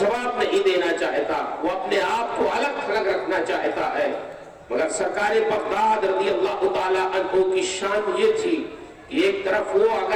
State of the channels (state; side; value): identical; both; correlation 1.00